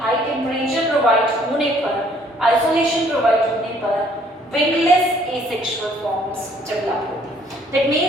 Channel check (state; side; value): normal; both; correlation 0.62